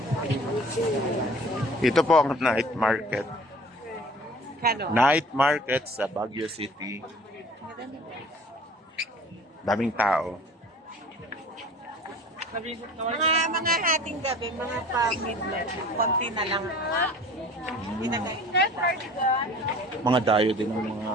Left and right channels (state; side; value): normal; both; correlation 0.46